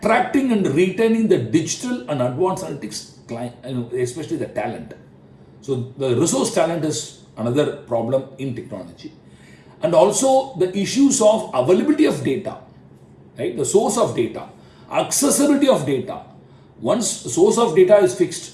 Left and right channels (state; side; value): identical; both; correlation 1.00